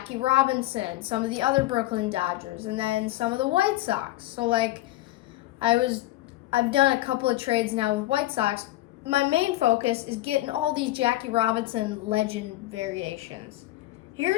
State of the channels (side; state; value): right; quieter; 16.7 dB